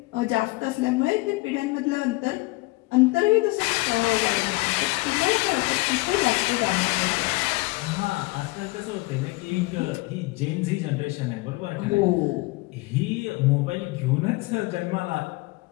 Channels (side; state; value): right; quieter; 23.2 dB